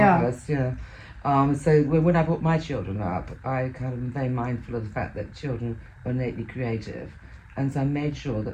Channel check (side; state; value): both; identical; correlation 1.00